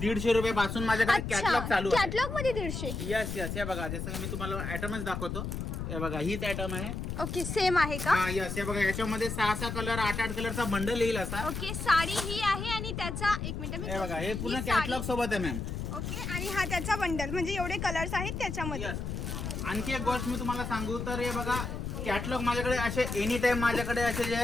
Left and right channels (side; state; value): left; noise; rumble, 4 dB below the sound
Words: रुपये पासून माझ्याकडे कॅटलॉग चालू आहे. कॅटलॉग मध्ये 150? यस हे बघा, जसं की मी तुम्हाला आयटमच दाखवतो. हे बघा हीच आयटम आहे. ओके, सेम आहे का? हा यस, हे बघा याच्यामध्ये 6 कलर 8 कलरचा बंडल येईल असा. ओके, साडी ही आहे आणि त्याचा एक मिनिट हे बघा हे पूर्ण कॅटलॉग सोबत आहे मॅम. ओके, आणि हा त्याचा बंडल, म्हणजे एवढे कलर्स आहेत त्याच्यामध्ये. आणखी एक गोष्ट मी तुम्हाला सांगू तर हे बघा कॅटलॉग माझ्याकडे असे एनी टाइम माझ्याकडे असे